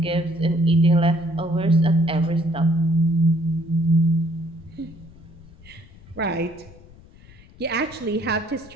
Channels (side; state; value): left; noise; rumble, 22 dB below the sound